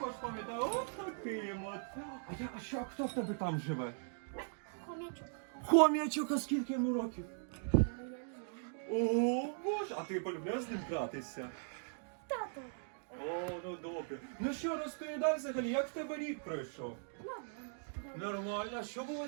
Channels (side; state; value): left; silent; digital silence